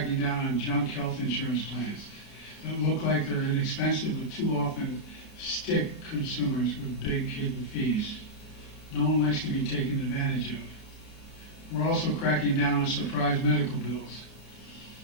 down on junk health insurance plans that look like they're inexpensive but too often stick consumers with big hidden fees. No one likes to be taken advantage of. We're also cracking down on surprise medical bills.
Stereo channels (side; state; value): right; late; 33 ms